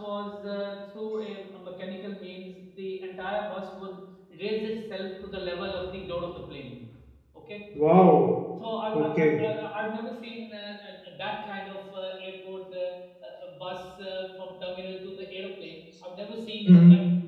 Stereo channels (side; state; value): both; identical; correlation 1.00